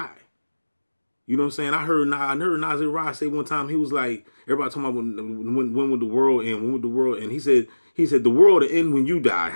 You know what I'm saying? I heard Nasir Rod say one time, he was like, everybody talking about when would the world end? When would the world end? He said the world will end when you die.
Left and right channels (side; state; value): both; inverted; correlation -1.00